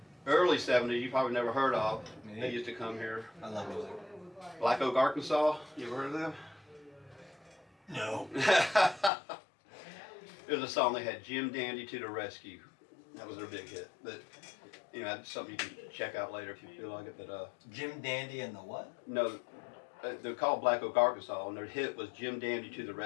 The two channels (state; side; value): drops out; right; at 9.1 s